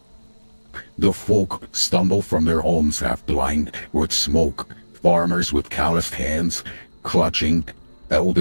The folk stumble from their homes half blind with smoke, farmers with calloused hands,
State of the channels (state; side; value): inverted; both; correlation -1.00